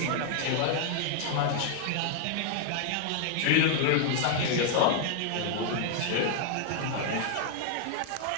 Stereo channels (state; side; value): different; both; correlation 0.00